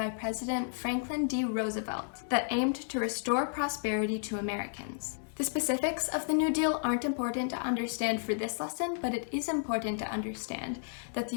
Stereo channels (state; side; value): silent; right; digital silence